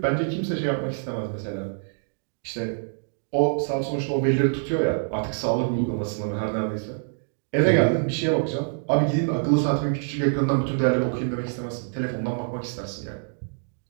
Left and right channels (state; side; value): silent; left; digital silence